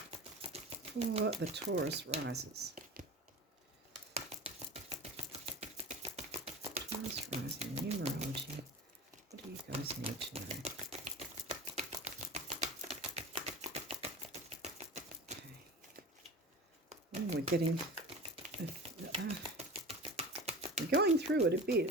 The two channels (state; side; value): normal; both; correlation 0.33